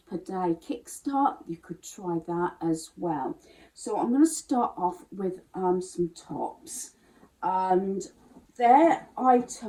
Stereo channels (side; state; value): both; identical; correlation 1.00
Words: per day kickstart. You could try that as well. So I'm going to start off with some tops, and they're